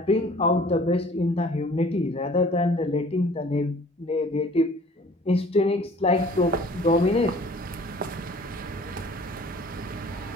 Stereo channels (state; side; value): normal; both; correlation 0.51